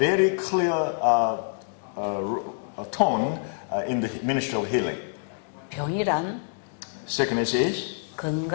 clear tone in the ministry of healing. 병이란 Sickness is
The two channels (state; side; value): silent; right; digital silence